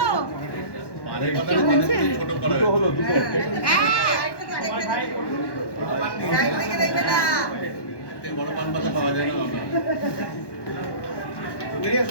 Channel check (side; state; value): right; late; 1.1 ms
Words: বড় পান পাতা পাওয়া যায় না।